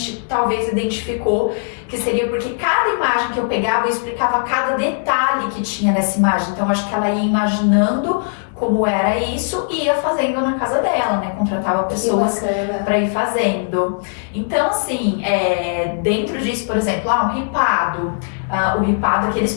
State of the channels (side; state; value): right; silent; 67 dB below the other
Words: talvez identificou que seria porque cada imagem que eu pegava, eu explicava cada detalhe que tinha nessa imagem. Então acho que ela ia imaginando como era isso e ia fazendo na casa dela, né? Contratava pessoas para ir fazendo. Então, assim, dentro disso, por exemplo, um ripado. O ripado, aqueles